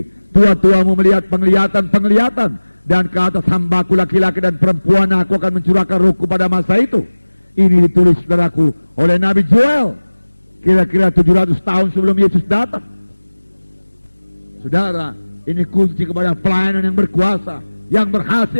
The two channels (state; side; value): inverted; both; correlation -1.00